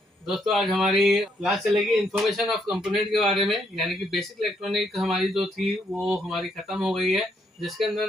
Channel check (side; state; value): both; normal; correlation 0.73